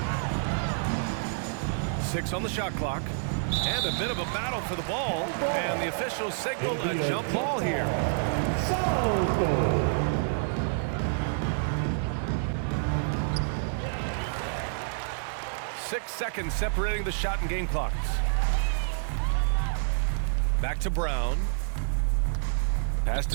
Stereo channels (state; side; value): silent; left; digital silence